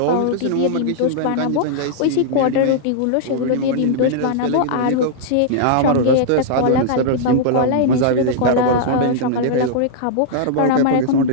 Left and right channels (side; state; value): both; different; correlation -0.01